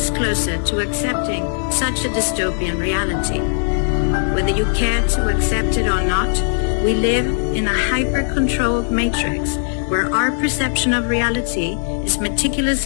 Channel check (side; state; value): right; silent; digital silence